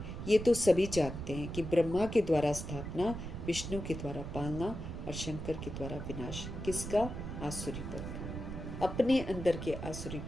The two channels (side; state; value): right; noise; rumble, 7 dB below the sound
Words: ये तो सभी जानते हैं कि ब्रह्मा के द्वारा स्थापना, विष्णु के द्वारा पालना और शंकर के द्वारा विनाश। किसका? आसुरीपन का। अपने अंदर के